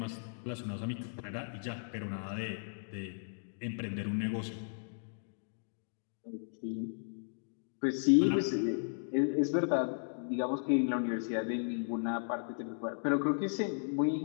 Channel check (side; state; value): right; silent; digital silence